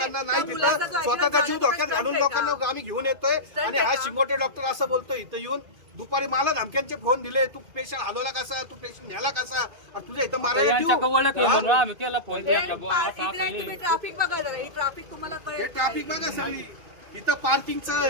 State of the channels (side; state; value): left; late; 2.5 ms